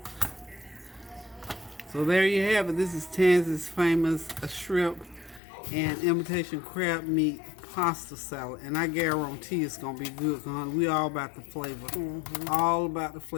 So there you have it. This is Tansey's famous shrimp and imitation crab meat pasta salad, and I guarantee it's gonna be good, honey. We all about the flavor. All about the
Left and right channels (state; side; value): drops out; right; at 5.4 s